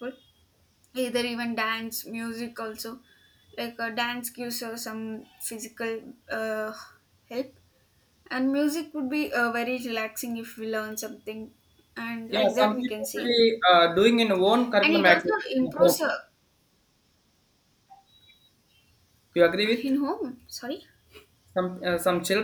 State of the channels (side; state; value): both; identical; correlation 1.00